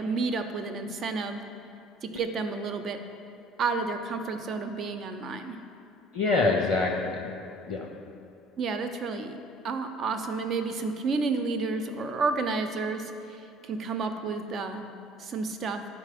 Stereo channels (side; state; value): both; normal; correlation 0.54